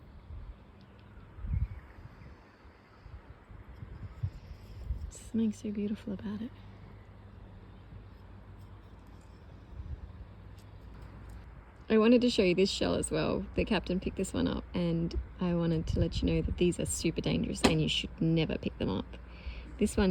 Something so beautiful about it. I wanted to show you this shell as well. The captain picked this one up, and I wanted to let you know that these are super dangerous and you should never pick them up. This one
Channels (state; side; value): identical; both; correlation 1.00